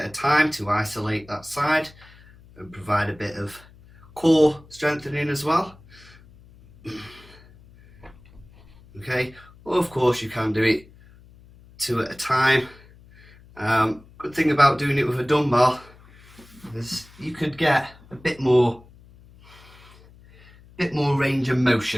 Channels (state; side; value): noise; left; hum, 25 dB below the sound